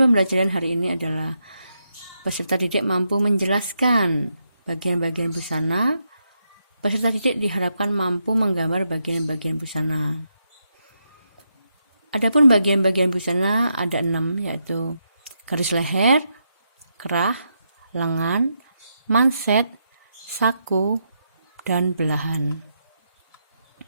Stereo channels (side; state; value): both; inverted; correlation -0.82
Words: pembelajaran hari ini adalah peserta didik mampu menjelaskan bagian-bagian busana. Peserta didik diharapkan mampu menggambar bagian-bagian busana. Adapun bagian-bagian busana ada 6, yaitu garis leher, kerah, lengan, manset, saku, dan belahan.